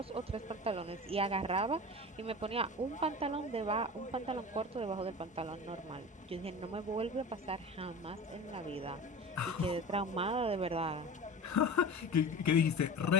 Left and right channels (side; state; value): both; normal; correlation 0.33